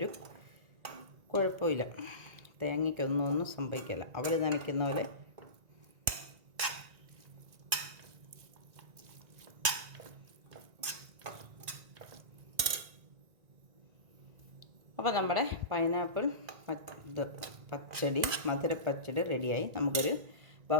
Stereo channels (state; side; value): late; left; 1.9 ms